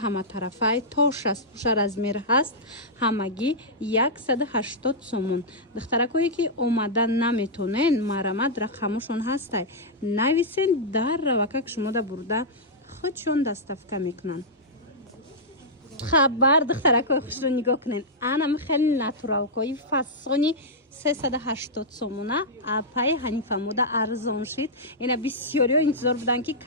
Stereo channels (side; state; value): both; normal; correlation -0.09